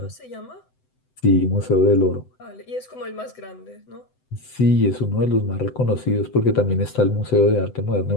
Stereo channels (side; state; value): right; late; 7.9 ms